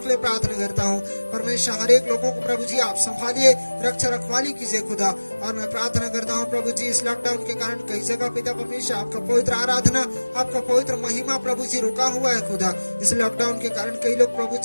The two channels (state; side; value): inverted; both; correlation -1.00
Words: लिए प्रार्थना करता हूँ परमेश्वर। हर एक लोगों को प्रभु जी आप संभालिए, रक्षा रखवाली कीजिए खुदा। और मैं प्रार्थना करता हूँ प्रभु जी इस लॉकडाउन के कारण कई जगह पिता परमेश्वर आपका पवित्र आराधना, आपका पवित्र महिमा प्रभु जी रुका हुआ है खुदा। इस लॉकडाउन के कारण कई लोग प्रभु